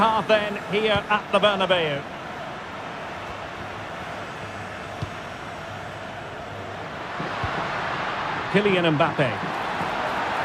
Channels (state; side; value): identical; both; correlation 1.00